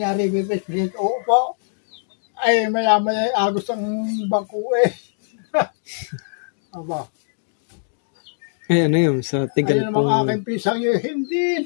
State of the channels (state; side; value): silent; right; digital silence